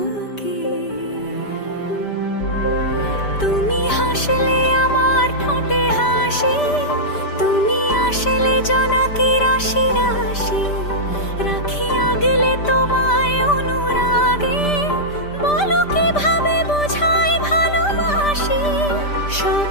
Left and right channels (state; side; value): late; right; 5.1 ms